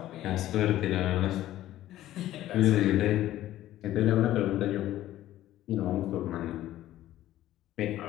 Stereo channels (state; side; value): quieter; right; 13.9 dB